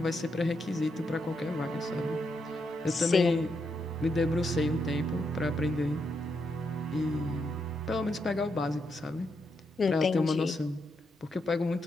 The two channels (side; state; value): both; normal; correlation 0.81